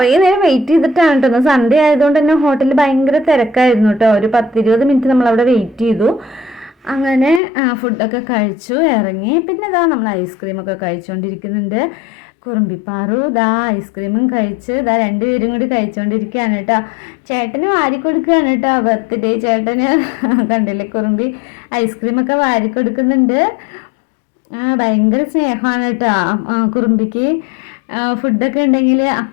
നേരം വെയിറ്റ് ചെയ്തിട്ടാണ് കേട്ടോ. സൺഡേ ആയതുകൊണ്ട് തന്നെ ഹോട്ടലിൽ ഭയങ്കര തിരക്കായിരുന്നു കേട്ടോ. ഒരു 10-20 മിനിറ്റ് നമ്മളവിടെ വെയിറ്റ് ചെയ്തു. അങ്ങനെ ഫുഡൊക്കെ കഴിച്ചു ഇറങ്ങി. പിന്നെ ഇതാ നമ്മൾ ഐസ്ക്രീമൊക്കെ കഴിച്ചുകൊണ്ടിരിക്കുന്നുണ്ട്. കുറുമ്പിപ്പാറു ഇതാ ഐസ്ക്രീമും കഴിച്ച് രണ്ടുപേരും കൂടി കഴിച്ചുകൊണ്ടിരിക്കുകയാണ് കേട്ടോ. ചേട്ടന് വാരി കൊടുക്കുകയാണ് കേട്ടോ, ബർത്ത്ഡേ ചേട്ടന്. കണ്ടില്ലേ, കുറുമ്പി ഐസ്ക്രീമൊക്കെ വാരി കൊടുക്കുന്നുണ്ട്. ഭയങ്കര സ്നേഹമാണ് കേട്ടോ കുറുമ്പിക്ക്. ഫുഡൊക്കെ ഉണ്ടെങ്കിൽ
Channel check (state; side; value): drops out; right; at 7.4 s